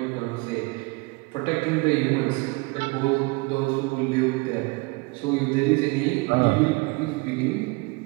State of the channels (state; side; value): quieter; left; 26.6 dB